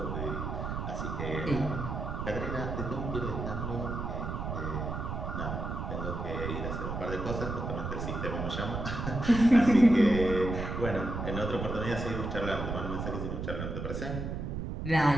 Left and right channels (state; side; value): noise; right; rumble, 4 dB below the sound